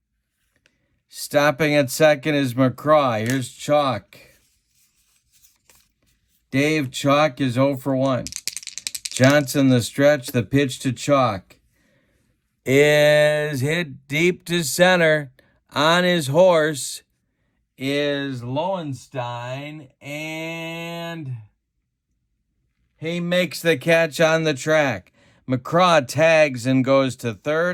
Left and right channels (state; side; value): identical; both; correlation 1.00